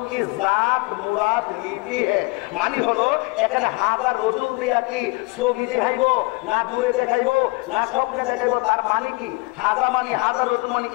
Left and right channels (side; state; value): right; quieter; 26.0 dB